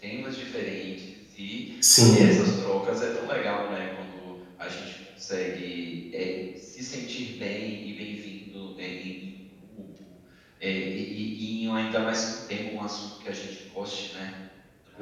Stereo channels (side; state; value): both; identical; correlation 1.00